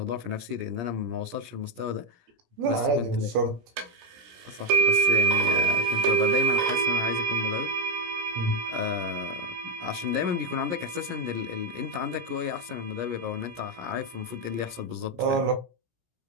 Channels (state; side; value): late; left; 17 ms